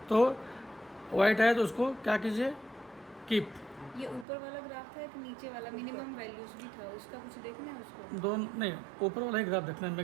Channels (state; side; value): drops out; left; at 4.2 s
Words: तो वाइट है तो उसको क्या कीजिए, कीप। ये ऊपर वाला ग्राफ था, एक नीचे वाला मिनिमम वैल्यूज भी था, उसका कुछ देखना है उसको। दोनों नहीं, ऊपर वाला ही ग्राफ देखना है।